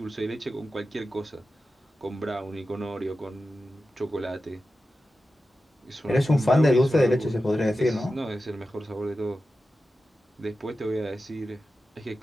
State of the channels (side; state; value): both; normal; correlation 0.93